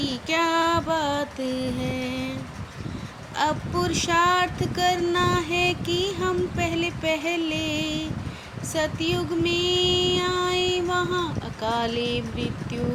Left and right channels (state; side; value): identical; both; correlation 1.00